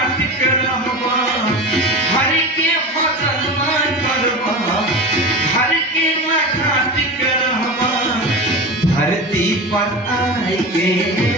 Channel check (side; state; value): both; normal; correlation 0.28